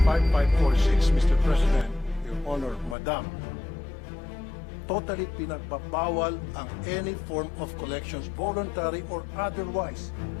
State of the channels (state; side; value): drops out; right; at 3.0 s